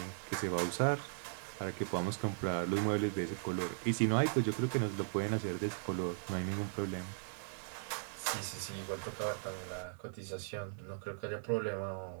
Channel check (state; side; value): silent; left; 52 dB below the other